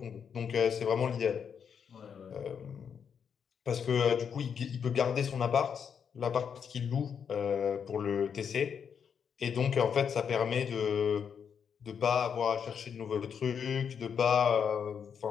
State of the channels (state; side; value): quieter; right; 7.2 dB